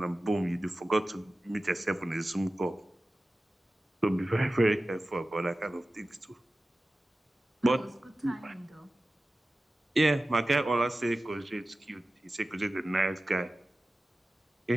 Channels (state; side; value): normal; both; correlation 0.96